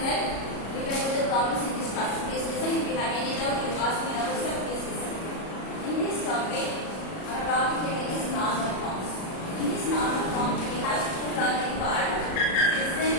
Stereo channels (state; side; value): late; right; 37 ms